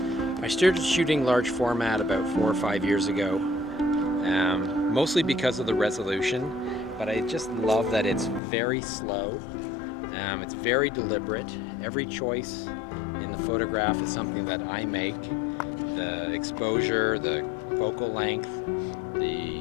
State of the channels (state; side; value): drops out; right; at 8.4 s